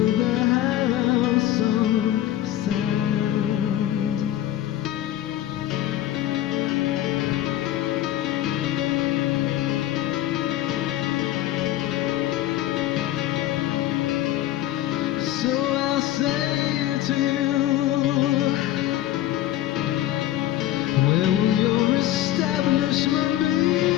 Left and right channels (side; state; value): right; quieter; 13.5 dB